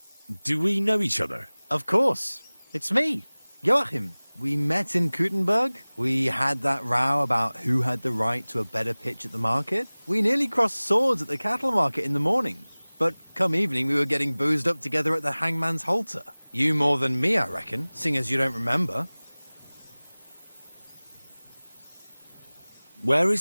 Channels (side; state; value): both; inverted; correlation -1.00